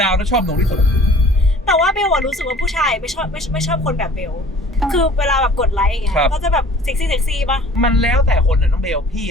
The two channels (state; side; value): normal; both; correlation 0.48